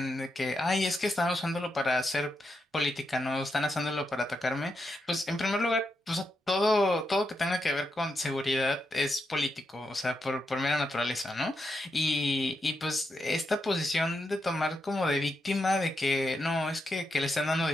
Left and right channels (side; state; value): both; normal; correlation 0.84